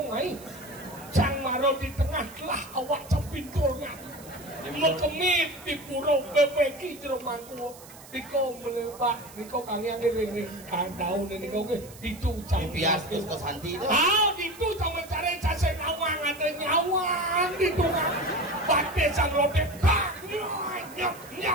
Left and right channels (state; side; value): noise; right; hiss, 19 dB below the sound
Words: ai. Cang maro di tengah lah awak capinturnya. Mekemit di purau bebeki jeromangku. Diko melepak, diko kangen ni daun ni kau ke itu pias ke Santi tu. Ah, itu cuma mencari cacing awang ada nyawang itu kan. Pakai sang robek, nyap.